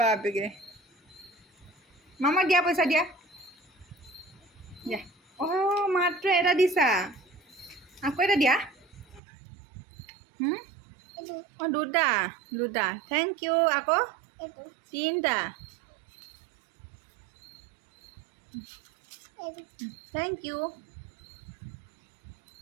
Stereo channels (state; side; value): drops out; left; at 9.2 s